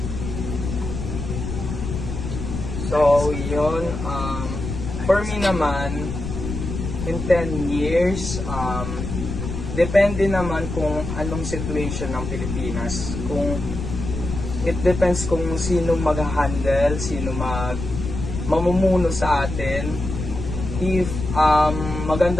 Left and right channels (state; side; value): noise; left; rumble, 6 dB below the sound